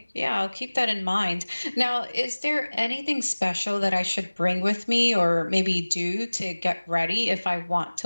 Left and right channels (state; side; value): inverted; both; correlation -1.00